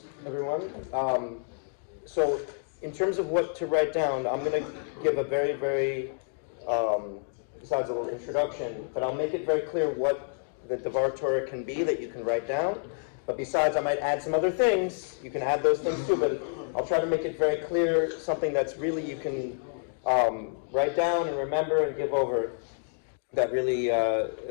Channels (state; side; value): silent; right; digital silence